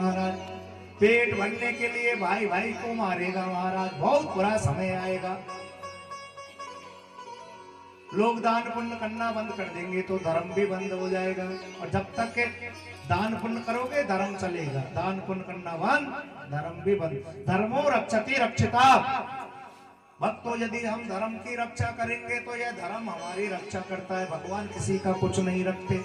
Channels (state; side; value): identical; both; correlation 1.00